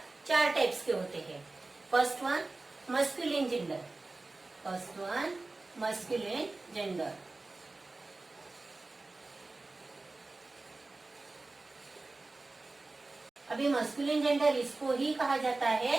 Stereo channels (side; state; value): left; quieter; 3.3 dB